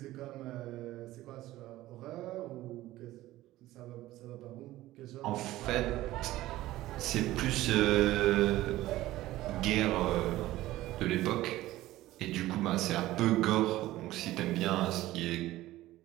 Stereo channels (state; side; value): quieter; left; 16.2 dB